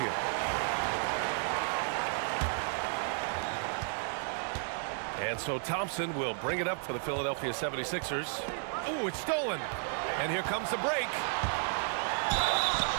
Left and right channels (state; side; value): silent; left; 56 dB below the other